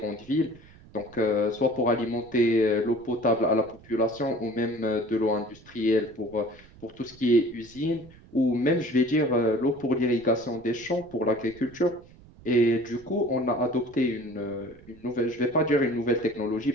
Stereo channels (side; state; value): right; noise; rumble, 23 dB below the sound